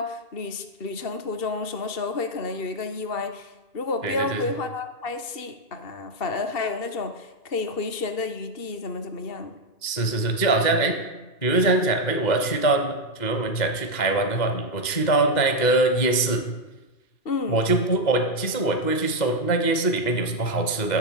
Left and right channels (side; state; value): right; late; 2.1 ms